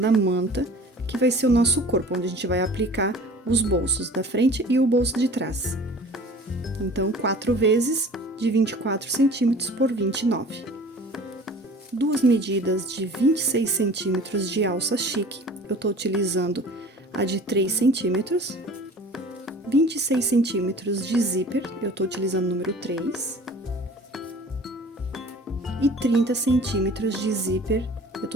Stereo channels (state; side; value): normal; both; correlation 0.45